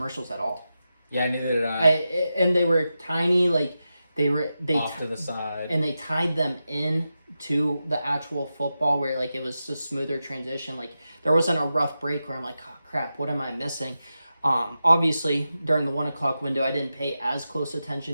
at all. Yeah, neither did I. And they were tiny, like they Off to the side. and they tied them in to the actual football where like it was a smoother transition. Like there wasn't a rough break where I'm like, oh crap, what am I missing? Obviously during the 1 o'clock window, I didn't pay as close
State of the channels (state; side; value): inverted; both; correlation -0.91